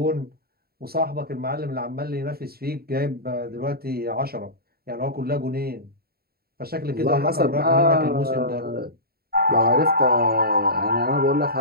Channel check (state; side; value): late; left; 0.45 ms